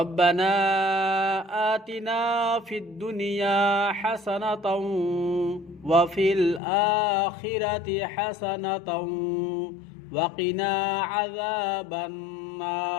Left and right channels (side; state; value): right; drops out; at 6.6 s